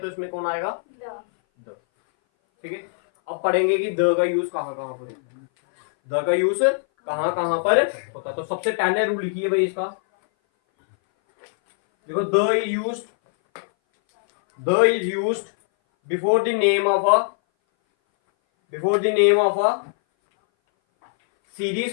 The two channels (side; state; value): right; silent; 60 dB below the other